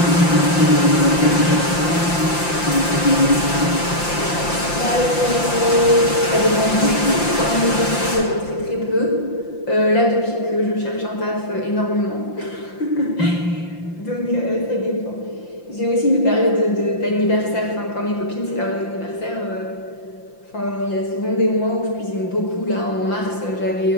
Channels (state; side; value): late; right; 5.8 ms